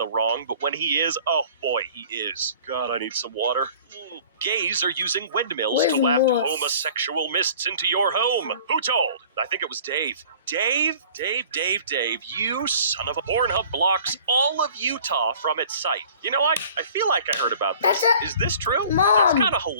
wrong, but when he is, oh boy, he is. God, I need some water. Gays are using windmills to waft homosexual mists into your home. Who told? I think it was Dave. Dave, you son of a Pornhub blocks all of Utah from its site. You know, I feel like I heard about this. Is this true? Mom. That's kind of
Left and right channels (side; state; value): both; inverted; correlation -0.49